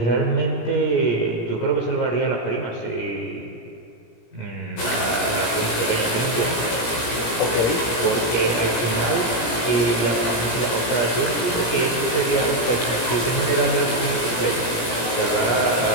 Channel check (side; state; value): right; late; 17 ms